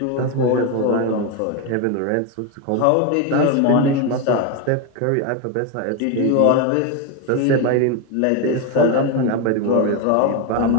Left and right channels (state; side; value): different; both; correlation 0.02